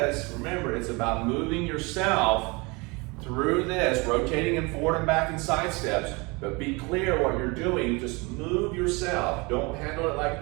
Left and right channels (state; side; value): quieter; left; 27.0 dB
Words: remember, it's about moving yourself through this, rotating and forward and back and side steps, but be clear what you're doing. Just move yourself. Don't handle it like